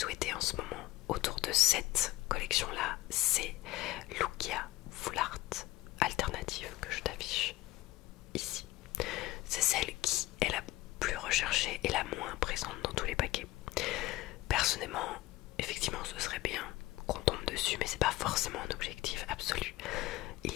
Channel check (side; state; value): right; quieter; 17.9 dB